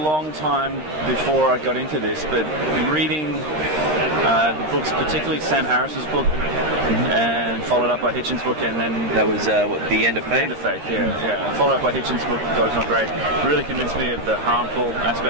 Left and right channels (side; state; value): left; late; 13 ms